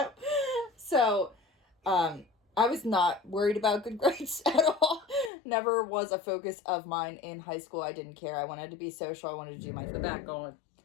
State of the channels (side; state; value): right; drops out; at 5.3 s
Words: So, I was not worried about good grades at all. Never was a focus of mine in high school. I didn't care. I wanted to be social. I wanted to do my The back going.